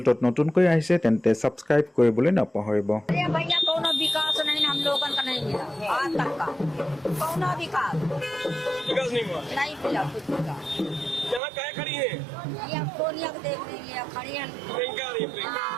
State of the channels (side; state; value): left; drops out; at 11.4 s